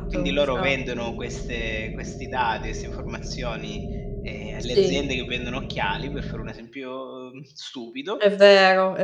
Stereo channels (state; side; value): identical; both; correlation 1.00